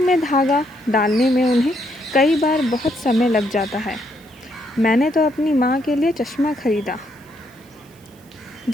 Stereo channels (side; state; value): right; noise; hiss, 29 dB below the sound